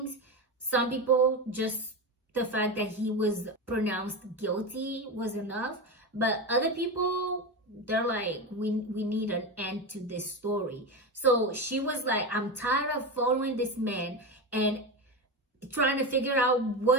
Some people, just the fact that he was pronounced guilty was enough, but other people, they're like, we need an end to this story. So she was like, I'm tired of following this man and trying to figure out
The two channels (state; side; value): normal; both; correlation 0.18